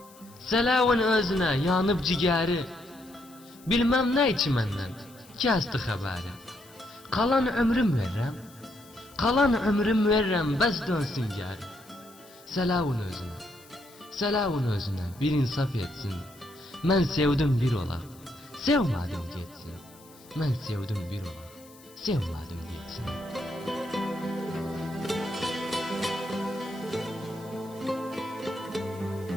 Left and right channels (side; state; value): left; noise; hiss, 24 dB below the sound